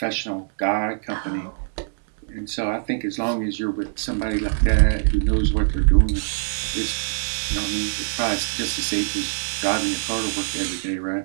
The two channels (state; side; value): silent; left; digital silence